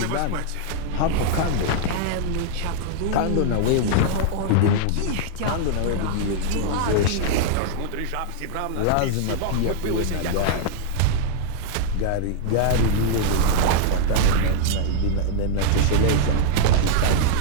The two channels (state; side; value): different; both; correlation 0.00